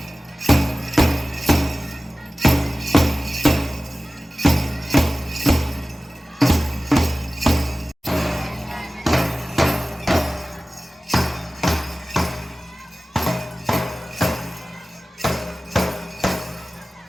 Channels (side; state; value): both; normal; correlation 0.96